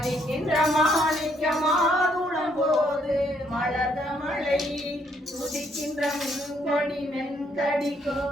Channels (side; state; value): both; normal; correlation 0.70